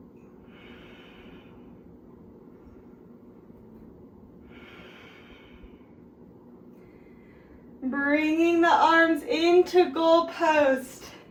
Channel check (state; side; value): identical; both; correlation 1.00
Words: Bringing the arms into goal post.